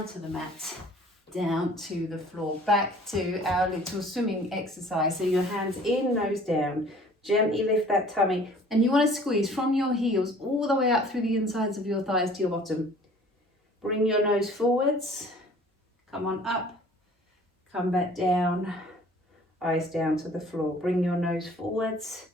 to the mat, down to the floor, back to our little swimming exercise. So your hands in, nose down, gently lift that tummy. And you want to squeeze from your heels all the way up through the insides of your thighs to your bottom. Bring your nose forwards, come on up, come back down, eyes down to the floor. Bring your nose forwards,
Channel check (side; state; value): both; normal; correlation 0.51